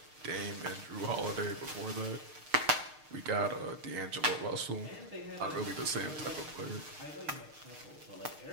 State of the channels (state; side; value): late; left; 6.6 ms